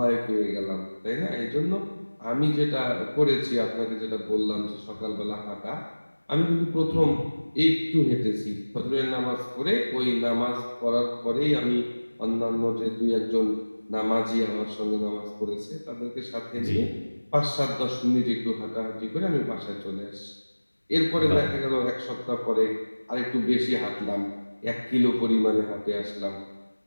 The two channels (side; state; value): both; inverted; correlation -1.00